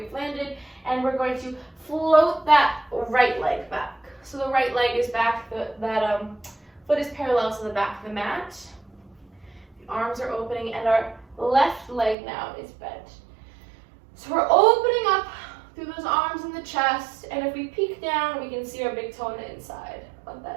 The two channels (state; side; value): drops out; left; at 12.2 s